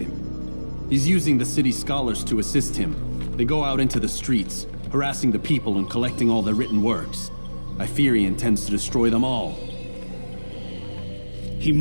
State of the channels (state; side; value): inverted; both; correlation -1.00